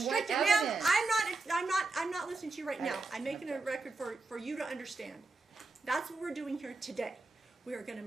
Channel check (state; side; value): quieter; left; 3.4 dB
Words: Ma'am, evidence? I'm not listening to you right now. Right. I'm making a record for you to understand. That's what we're doing here today. We are going to